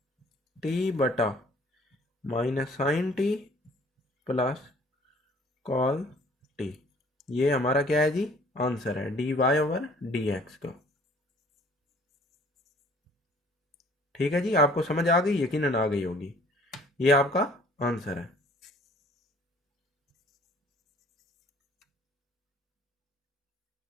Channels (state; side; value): normal; both; correlation 0.55